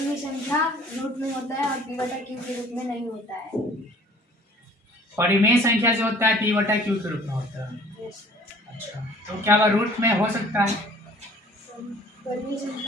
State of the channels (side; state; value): both; normal; correlation 0.52